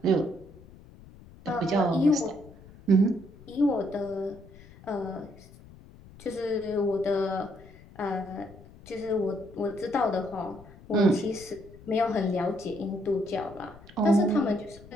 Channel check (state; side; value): noise; left; rumble, 21 dB below the sound